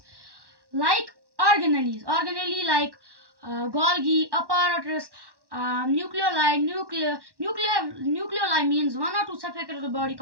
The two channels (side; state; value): left; late; 1.1 ms